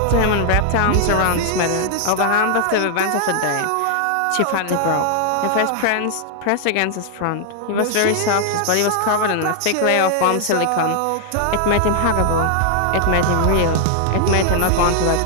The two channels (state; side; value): different; both; correlation 0.00